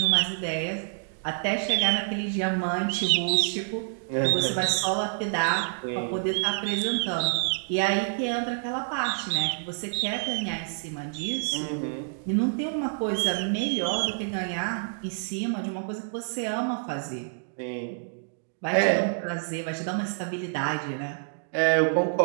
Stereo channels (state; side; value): silent; left; digital silence